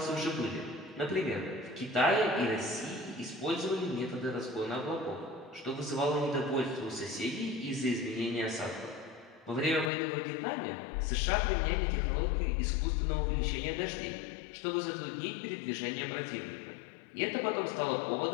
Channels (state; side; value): drops out; right; at 9.9 s